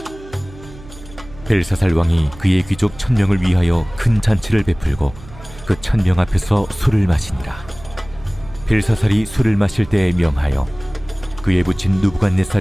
벨사살 왕이 그의 귀족 1000명을 위하여 큰 잔치를 베풀고 그 1000명 앞에서 술을 마시니라. 벨사살이 술을 마실 때에 명하여 그의 부친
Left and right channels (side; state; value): right; noise; hum, 18 dB below the sound